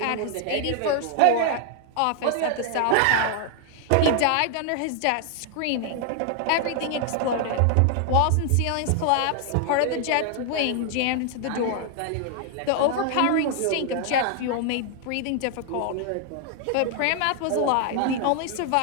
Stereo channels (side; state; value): both; different; correlation 0.00